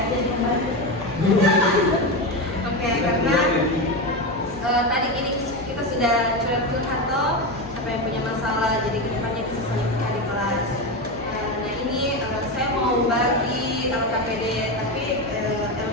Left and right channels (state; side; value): normal; both; correlation 0.16